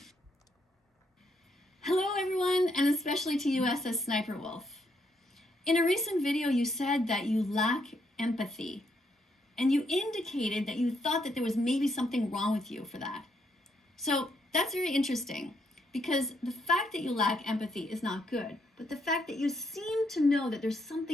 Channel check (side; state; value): both; normal; correlation 0.75